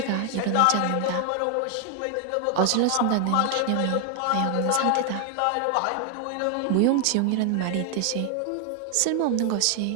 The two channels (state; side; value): different; both; correlation 0.00